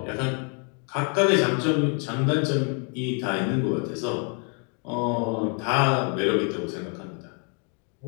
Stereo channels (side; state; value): right; quieter; 38.9 dB